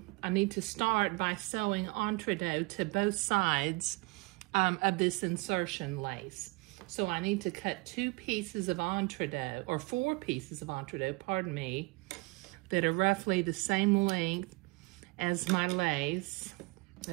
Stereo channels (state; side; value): quieter; left; 26.4 dB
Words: I need to start by sewing entredeaux to both sides of this insertion lace. So I need to cut two pieces of entredeaux, or four pieces of entredeaux, pardon me, that are roughly the same length as my lace.